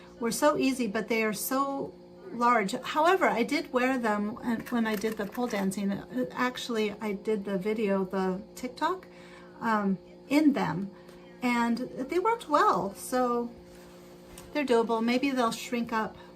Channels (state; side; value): identical; both; correlation 1.00